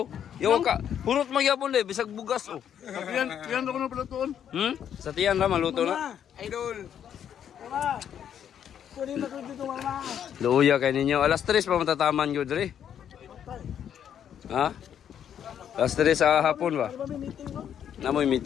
Yo ka, hurot magyapon le, bisag bugas oh. Yan ako na pala tuon. Sa tiyan na maluto na. Idol. Mama. Kunin mo dito mama. Luya kay ninyo. Alas 3 pa matataman yun dre. Ha? Alas 3 sa hapon ba? May meeting no? Namoy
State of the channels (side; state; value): right; quieter; 9.2 dB